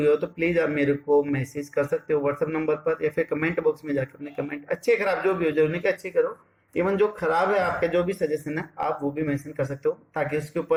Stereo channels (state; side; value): identical; both; correlation 1.00